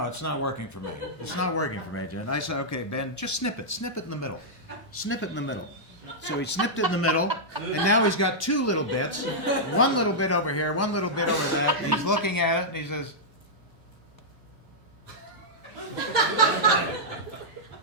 it's not working for me. It's not working for me, Jen. I said, okay, Ben, just snip it. Snip it in the middle. Snip it in the middle. So he snipped it in the middle, and now he's got two little bits. One little bit over here, one little bit over there. And he's looking at it, and he says,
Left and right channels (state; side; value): normal; both; correlation -0.09